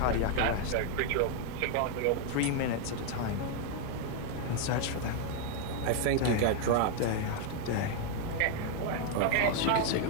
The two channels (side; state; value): both; different; correlation 0.00